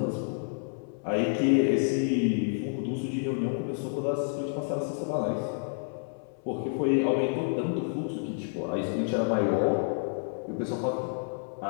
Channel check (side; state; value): right; silent; 58 dB below the other